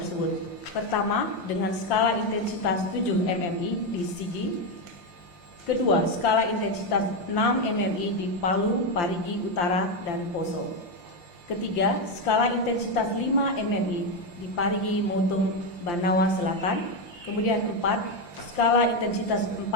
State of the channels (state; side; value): late; right; 5.8 ms